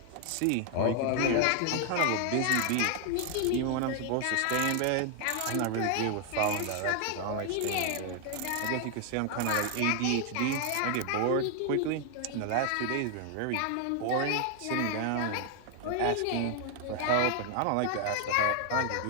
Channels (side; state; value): both; different; correlation 0.00